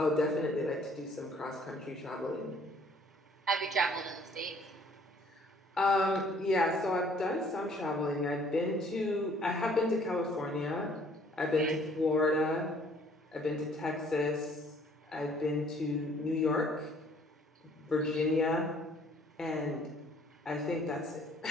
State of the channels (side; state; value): both; normal; correlation 0.59